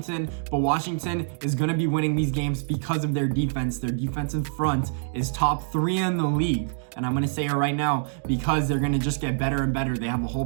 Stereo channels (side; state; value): left; silent; digital silence